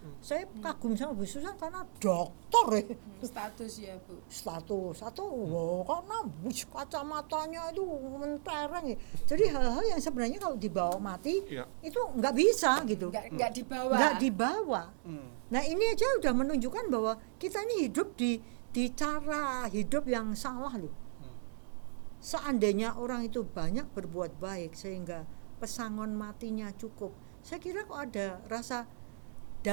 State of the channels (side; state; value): left; silent; digital silence